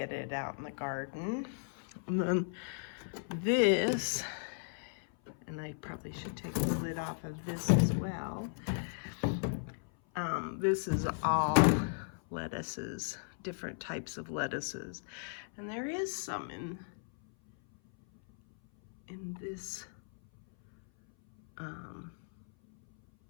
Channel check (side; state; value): right; silent; 54 dB below the other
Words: it out in the garden. And then this, and I probably should take the lid off of this as well. This is all lettuces, different types of lettuces. And there is some in this